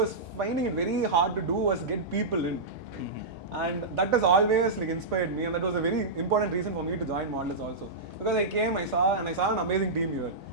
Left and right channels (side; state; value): left; quieter; 3.3 dB